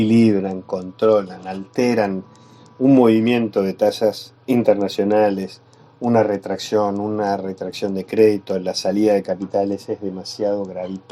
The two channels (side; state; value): both; identical; correlation 1.00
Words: controlan, alteran un movimiento de tasas internacionales, una retracción de crédito, la salida de capitales es demasiado